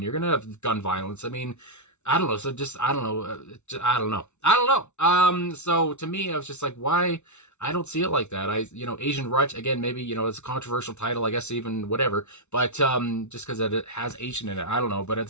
You're going to have gun violence. I mean, I don't know. So just, I don't know. So to me, I was just like, why? I don't see it like that. Asian Rut, again, maybe, it's a controversial title, I guess, even whatever, but, just cause it has Asian in it, I don't know. But at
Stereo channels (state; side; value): late; right; 0.82 ms